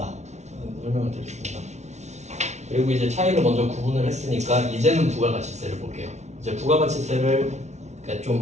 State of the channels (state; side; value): late; left; 0.32 ms